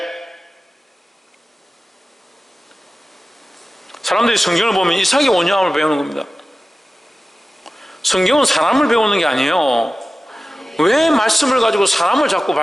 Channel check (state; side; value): normal; both; correlation 0.95